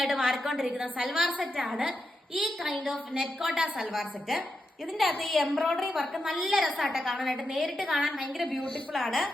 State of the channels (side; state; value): both; normal; correlation 0.86